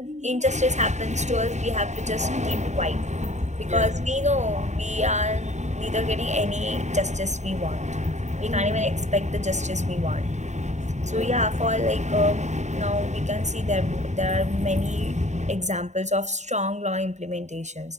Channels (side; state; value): left; late; 0.34 ms